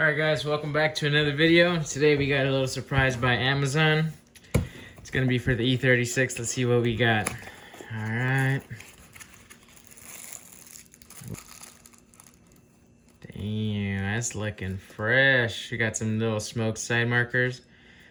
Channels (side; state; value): both; identical; correlation 1.00